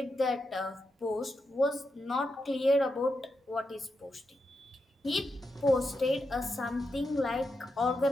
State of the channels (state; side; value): normal; both; correlation 0.86